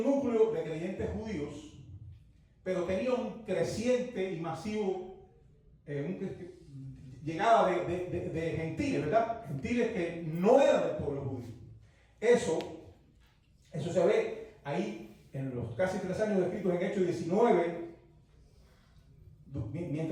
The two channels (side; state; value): both; identical; correlation 1.00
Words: de creyentes judíos, pero tenía un creciente y masivo llegada de gentiles, ¿verdad? Gentiles que no eran del pueblo judío. Eso se ve ahí en los casi 3 años descritos en Hechos 19.